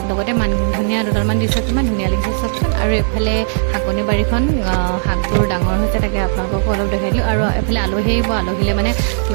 लगते मान धनिया दुटालमान दिছে किमान धुनिया লাগিছে सबचोन और एफाले हाकनि बारीखन हाकबोर डाঙर হৈছে তাকে আপোনালোকক অলপ দেখাই দিলো আৰু এফালে আলহী আহিব আলহীলে মানে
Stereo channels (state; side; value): silent; left; 68 dB below the other